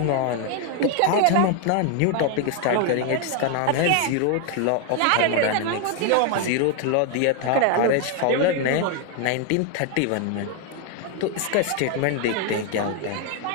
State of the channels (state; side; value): different; both; correlation 0.01